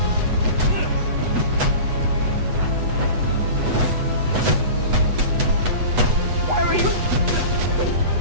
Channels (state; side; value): late; left; 8.1 ms